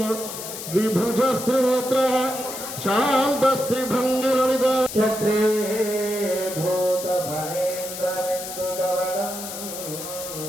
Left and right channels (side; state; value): left; noise; hiss, 9 dB below the sound